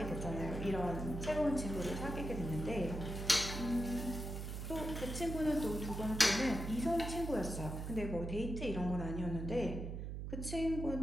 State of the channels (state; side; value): noise; right; hum, 5 dB below the sound